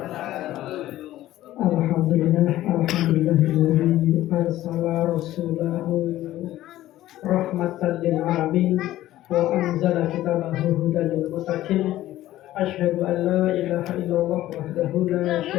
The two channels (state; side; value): quieter; right; 14.6 dB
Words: Alhamdulillah, alhamdulillahilladzi arsala rasulahu rahmatan lil alamin wa anzala kitabahu hudan lil muttaqin. Asyhadu an la ilaha illallah wahdahu la